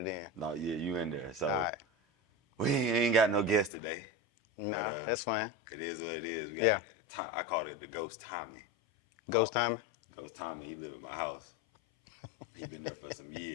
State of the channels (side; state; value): right; drops out; at 3.7 s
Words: in. No, yeah, you in there. So right. We ain't got no guest today. No, but that's fine. It is what it is. We got I call it the Ghost Tommy. Ghost Tommy? Ghost Tommy, he live at my house. He been there for some